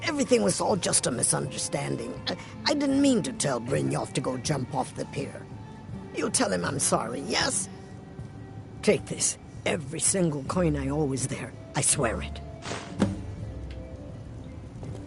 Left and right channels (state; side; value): identical; both; correlation 1.00